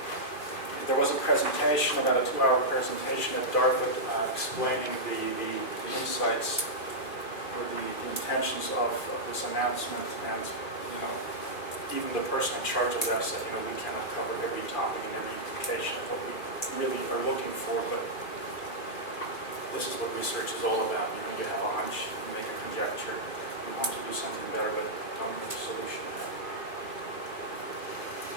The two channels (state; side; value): late; right; 2.4 ms